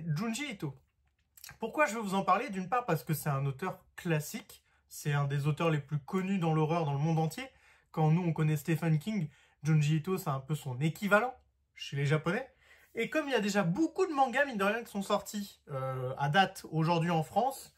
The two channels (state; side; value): identical; both; correlation 1.00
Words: Junji Ito. Pourquoi je vais vous en parler? D'une part parce que c'est un auteur classique, c'est un des auteurs les plus connus dans l'horreur dans le monde entier. Quand nous, on connaît Stephen King, Junji Ito, c'est un peu son équivalent chez les Japonais. Et comme il y a déjà beaucoup de mangas, mine de rien, qui sont sortis à date aujourd'hui en France,